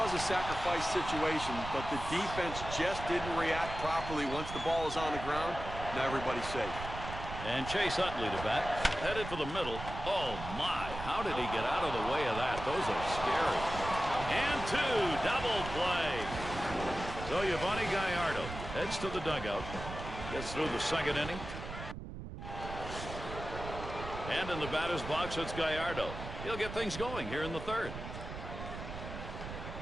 a sacrifice situation, but the defense just didn't react properly once the ball is on the ground. Now everybody's safe. And Chase Utley to bat. Headed for the middle. Oh, my. How did he get out of the way of that? Those are scary. And two. Double play. So Yovani Gallardo heads to the dugout. Gets through the second inning. And in the batter's box, it's Gallardo. He'll get things going here in the third.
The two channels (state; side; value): noise; right; rumble, 9 dB below the sound